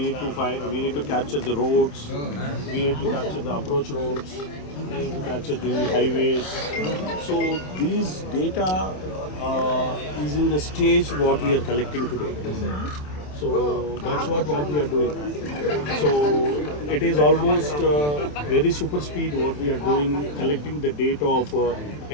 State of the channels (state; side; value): late; right; 27 ms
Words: need to capture the roads, we need to capture the approach roads, we need to capture the highways. So these data is in the stage what we are collecting today. So that's what we are doing. So it is almost very super speed what we are doing, collecting the data of